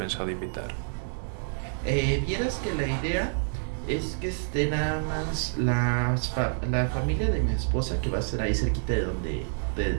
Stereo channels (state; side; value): silent; left; 59 dB below the other